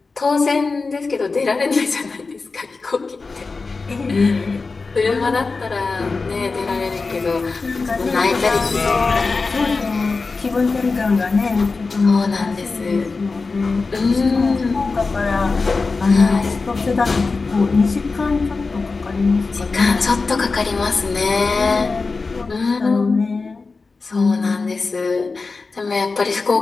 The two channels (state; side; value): quieter; right; 4.1 dB